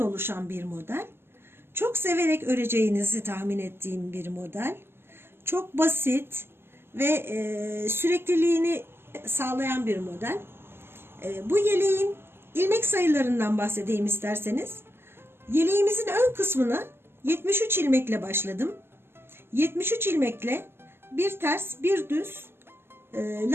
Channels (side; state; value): left; late; 0.12 ms